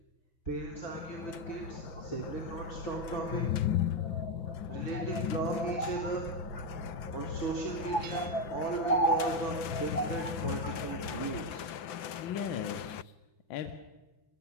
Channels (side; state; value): right; late; 6.0 ms